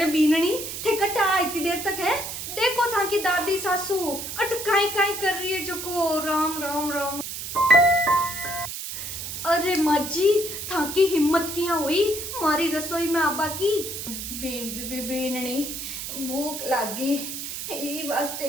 बीनणी थे कटा इतनी देर तक है। देखो था कि दादी सासू अटकाई काई कर रही है जको। राम राम राम। अरे माजी था की हिम्मत किया हुई मारी रसोई में आबा की। बीनणी भूख लागी ये वास्ते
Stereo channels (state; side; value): noise; right; hiss, 7 dB below the sound